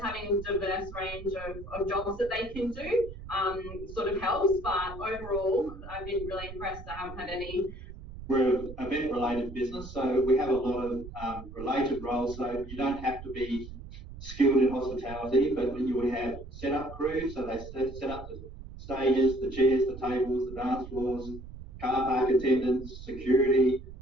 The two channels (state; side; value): noise; right; rumble, 13 dB below the sound